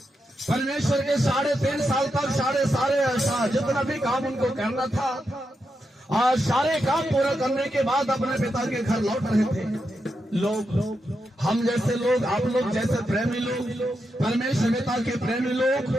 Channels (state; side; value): normal; both; correlation 0.85